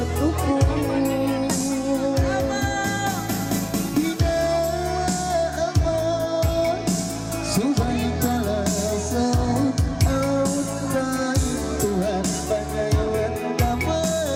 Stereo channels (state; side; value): identical; both; correlation 1.00